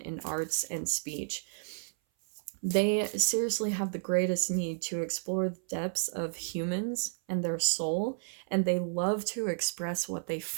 arts and speech. They seriously have the greatest need to explore the depths of humans and their soul, and they love to express what they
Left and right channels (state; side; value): silent; left; 56 dB below the other